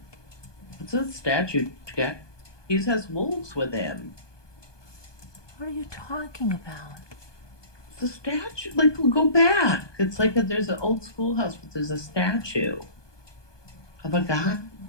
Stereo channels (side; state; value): right; late; 1.2 ms